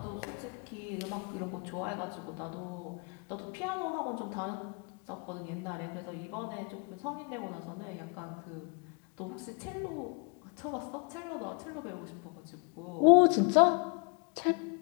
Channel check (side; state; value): right; quieter; 35.4 dB